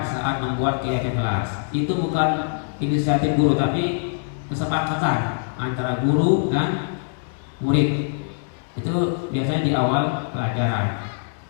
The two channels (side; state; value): right; silent; 63 dB below the other